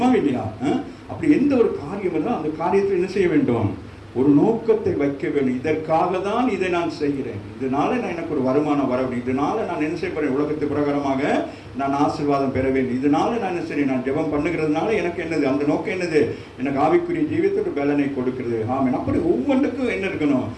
இல்லையா? அப்படி எந்த ஒரு காரியம் இருந்தால் அந்த காரியத்தில் என்ன செய்ய வேண்டும்? ஒரு நோக்கத்தை வைக்க வேண்டும். இதற்காக தான் இதை நான் செய்கிறேன், இதனால நான் எனக்கு ஒரு வருமானம் வர வேண்டும், இதனால நான் என்ன செய்ய போறேன், உலகத்து பிரகாரமாக நான் ஆசீர்வாதம் பெற வேண்டும், இதனால நான் என்ன செய்ய, நான் ஜெபம் பண்ணுகிறதுனால எனக்கு என்னது, அந்த நோக்கம் என்னது, எனக்கு ஆவிக்குரிய ஜீவியத்துக்கு பலனை கொடுக்கிறது. ஆமென். அப்படி ஒவ்வொன்றுக்கும் என்ன இருக்கணும்?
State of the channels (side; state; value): both; identical; correlation 1.00